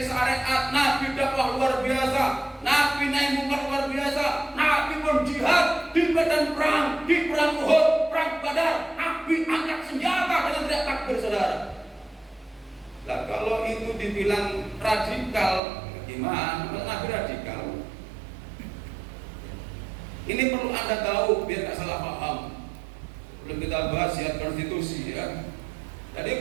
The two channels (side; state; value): left; drops out; at 15.6 s